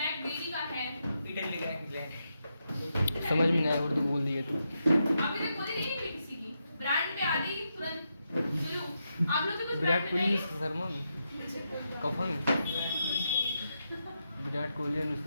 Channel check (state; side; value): inverted; both; correlation -0.84